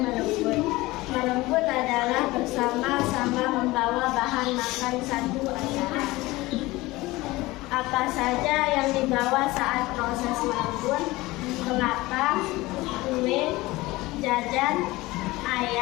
Merenggut adalah bersama-sama membawa bahan makan satu acara. Apa saja yang dibawa saat proses merenggut? Kelapa, kue, jajan,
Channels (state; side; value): quieter; right; 20.0 dB